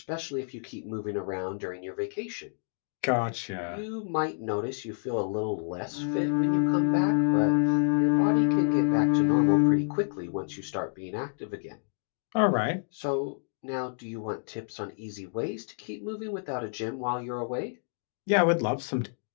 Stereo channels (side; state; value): right; silent; digital silence